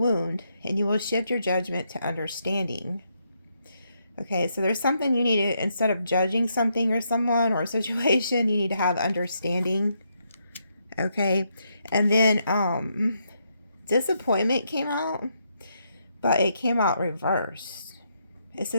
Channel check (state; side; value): inverted; both; correlation -0.78